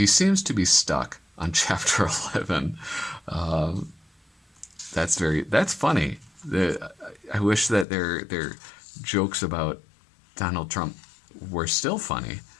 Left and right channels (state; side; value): drops out; right; at 7.9 s